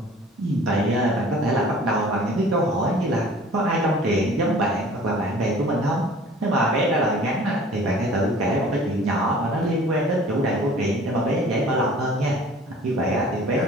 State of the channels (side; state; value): both; normal; correlation 0.47